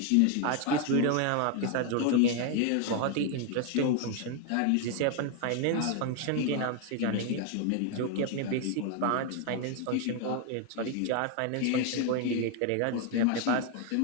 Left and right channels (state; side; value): different; both; correlation 0.01